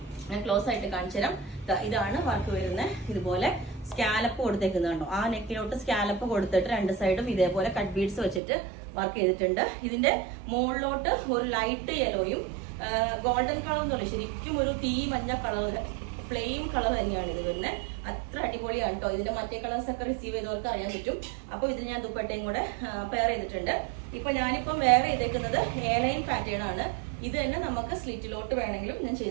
ഞാൻ ക്ലോസ് ആയിട്ട് കാണിച്ചു തരാം. ഇതാണ് വർക്ക് വരുന്നത്. ഇതുപോലെ സ്കാലപ്പ് കൊടുത്തേക്കുന്നുണ്ടോ, ആ നെക്കിലോട്ട് സ്കാലപ്പ് കൊടുത്തിട്ട് രണ്ട് സൈഡും ഇതേപോലെ കട്ട് ബീഡ്സ് വെച്ചിട്ട് വർക്ക് ചെയ്തിട്ടുണ്ട്. ഇതിന്റെ മുകളിലോട്ട് ഒരു ലൈറ്റ് യെലോയും ഗോൾഡൻ കളർ എന്നല്ല, ശരിക്കും ഒരു തീ മഞ്ഞ കളർ, ഫ്ലെയിം കളർ തന്നെയാണ് ഇത് വരുന്നത്. അത്ര അടിപൊളിയാണ് കേട്ടോ. ഇതിന്റെ മറ്റേ കളേഴ്സ് ഒക്കെ റിസീവ് ചെയ്തവർക്ക് അറിയാൻ പറ്റും. അപ്പൊ ഇതിൽ ഞാൻ ദുപ്പട്ടയും കൂടെ പെയർ ചെയ്തിട്ടുണ്ട്. ഇപ്പൊ ഞാനിപ്പം വെയർ ചെയ്തേക്കുന്നത് എയർലൈൻ പാറ്റേൺ ആണ്. ഇത് തന്നെ നമുക്ക് സ്ലിറ്റിലോട്ട് വേണമെങ്കിലും ഞാൻ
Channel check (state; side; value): drops out; left; at 8.4 s